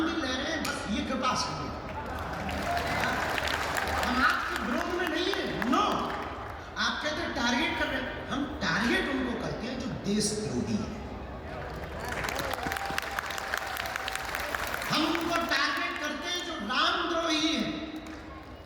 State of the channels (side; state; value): both; identical; correlation 1.00